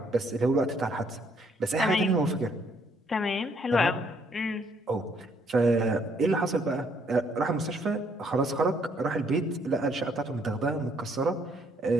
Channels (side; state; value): both; normal; correlation 0.67